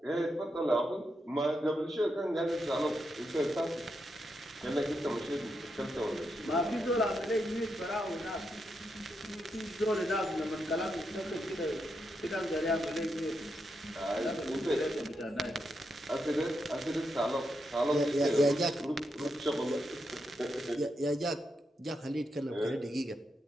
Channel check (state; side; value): normal; both; correlation 0.83